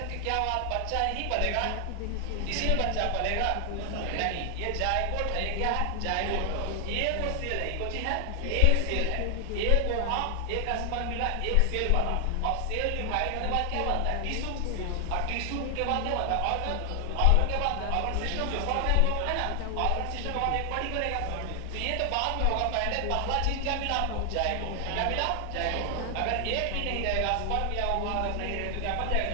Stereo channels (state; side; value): different; both; correlation 0.00